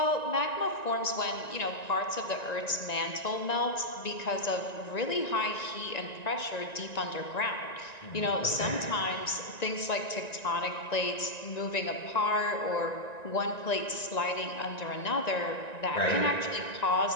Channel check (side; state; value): right; late; 1.9 ms